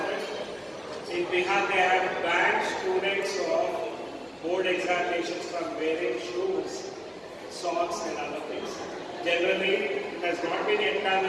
it. In Bihar, they have banned students of board examinations from wearing shoes, socks and other things. Generally, it has not been yet done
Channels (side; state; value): both; identical; correlation 1.00